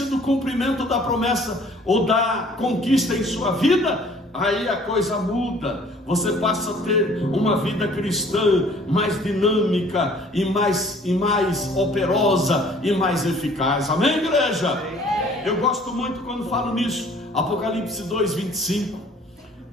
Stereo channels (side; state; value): both; normal; correlation 0.54